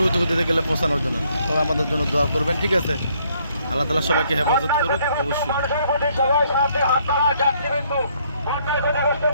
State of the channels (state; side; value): inverted; both; correlation -0.68